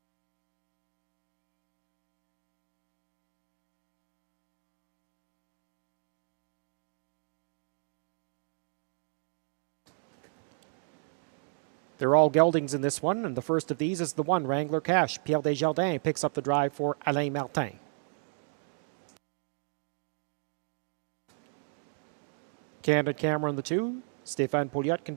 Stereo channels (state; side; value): silent; left; 55 dB below the other